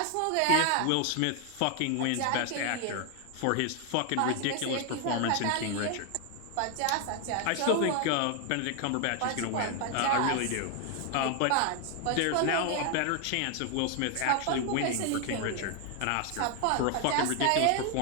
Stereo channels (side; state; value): both; different; correlation 0.00